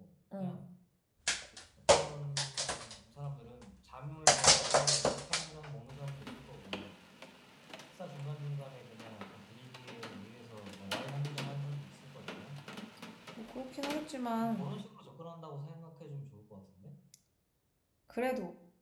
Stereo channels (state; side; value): identical; both; correlation 1.00